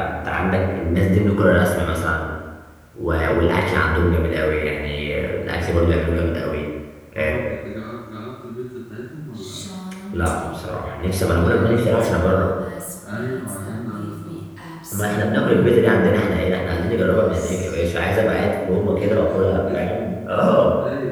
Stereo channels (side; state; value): both; identical; correlation 1.00